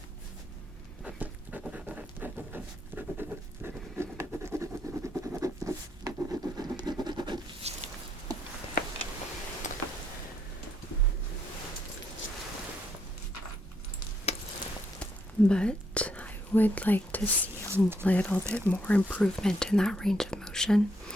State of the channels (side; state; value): both; normal; correlation 0.74